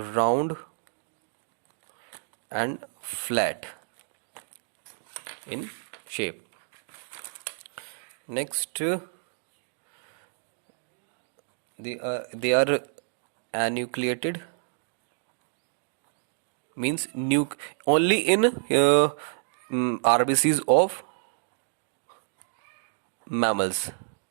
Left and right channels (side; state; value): left; silent; digital silence